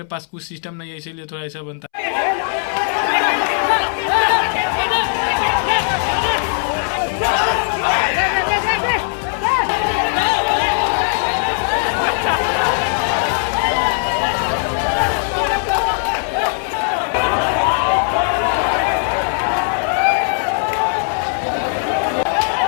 पास कुछ सिस्टम नहीं है, इसीलिए थोड़ा ऐसा बनता है।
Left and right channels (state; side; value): silent; right; 67 dB below the other